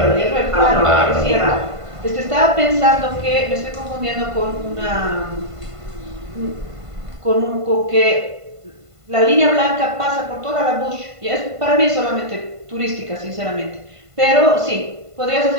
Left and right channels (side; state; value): left; late; 1.5 ms